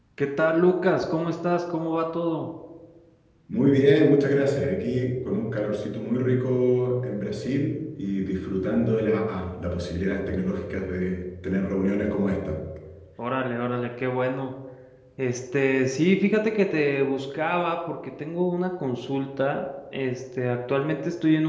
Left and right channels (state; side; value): identical; both; correlation 1.00